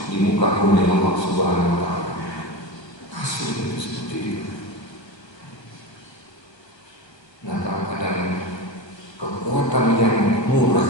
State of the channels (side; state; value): right; late; 1.3 ms